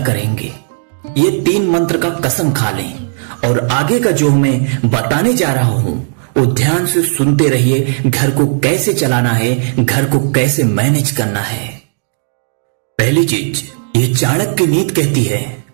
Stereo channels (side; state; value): left; silent; digital silence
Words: करेंगे। ये 3 मंत्र का कसम खा लें। और आगे का जो मैं बताने जा रहा हूं वो ध्यान से सुनते रहिए। घर को कैसे चलाना है, घर को कैसे मैनेज करना है। पहली चीज, ये चाणक्य नीति कहती है